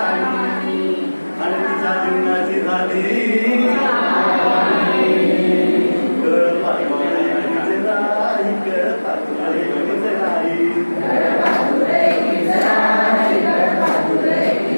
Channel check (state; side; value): inverted; both; correlation -1.00